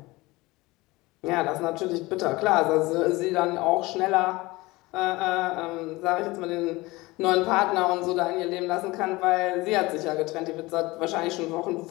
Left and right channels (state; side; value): quieter; right; 21.3 dB